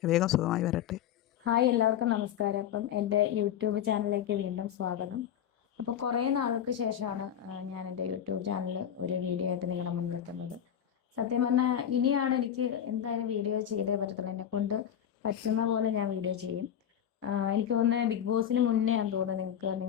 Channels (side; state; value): right; quieter; 9.7 dB